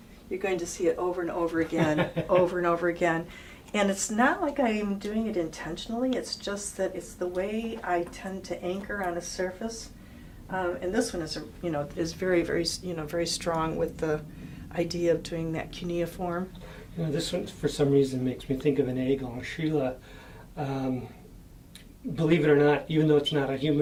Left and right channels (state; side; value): identical; both; correlation 1.00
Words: You're going to see it over and over again, over and over again. And it's not like I'm doing it intentionally, it's just that it's the way I tend to anchor on a surface. And this one is very, very, very strong with the idea of doing that cuneiform. This one, for some reason, makes me think of an egg en Sheila. Believe it or not, even though it's not a